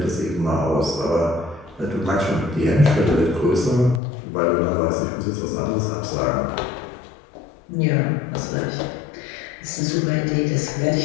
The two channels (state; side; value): drops out; right; at 4.0 s